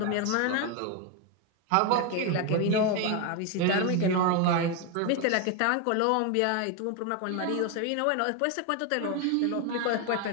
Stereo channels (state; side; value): different; both; correlation 0.01